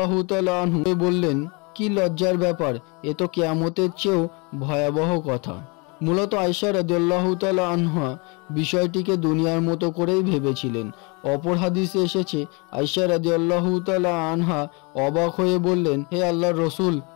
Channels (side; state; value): right; quieter; 30.5 dB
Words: তাআলা আনহু বললেন, কি লজ্জার ব্যাপার, এ তো কিয়ামতের চেয়েও ভয়াবহ কথা। মূলত আয়েশা রাদিয়াল্লাহু তাআলা আনহা বিষয়টিকে দুনিয়ার মতো করেই ভেবেছিলেন। অপর হাদিসে এসেছে, আয়েশা রাদিয়াল্লাহু তাআলা আনহা অবাক হয়ে বললেন, হে আল্লাহর রাসূল,